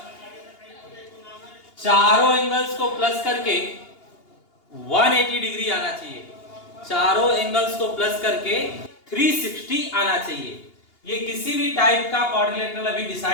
चारों एंगल्स को प्लस करके 180 degree आना चाहिए। चारों एंगल्स को प्लस करके 360 आना चाहिए। ये किसी भी टाइप का क्वाड्रिलेटरल अभी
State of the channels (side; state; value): right; late; 2.8 ms